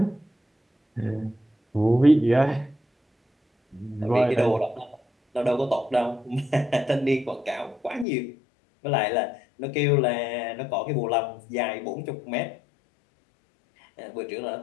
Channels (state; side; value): drops out; right; at 8.1 s